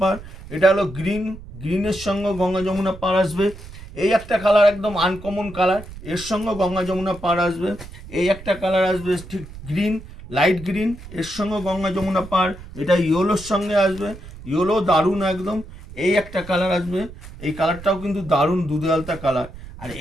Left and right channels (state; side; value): noise; right; rumble, 15 dB below the sound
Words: পার। এটা হলো গ্রিন, গ্রিনের সঙ্গে গঙ্গা যমুনা পার আসবে। এই একটা কালার একদম আনকমন কালার, এর সঙ্গে গঙ্গা যমুনা পার আসবে। এই একটা কালার আসবে ঠিক গ্রিন, লাইট গ্রিন, এর সঙ্গে গঙ্গা যমুনা পার। এটা ইয়েলোর সঙ্গে আসবে, ইয়েলো দারুণ একদম। এই একটা কালার আসবে, এই কালারটাও কিন্তু দারুণ দুধে আলতা কালার। আর